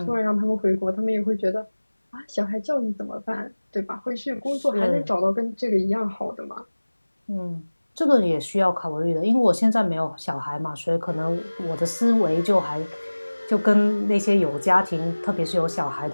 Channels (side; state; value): both; inverted; correlation -1.00